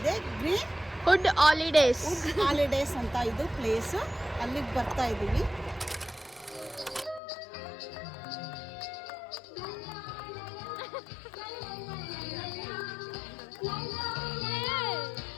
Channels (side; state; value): right; drops out; at 7.2 s